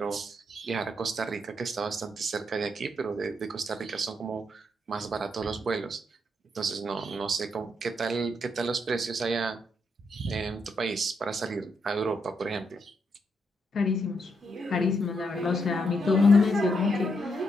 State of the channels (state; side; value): normal; both; correlation 0.79